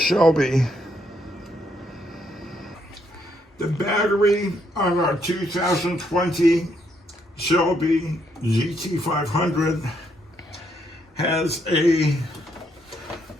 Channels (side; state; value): both; normal; correlation 0.74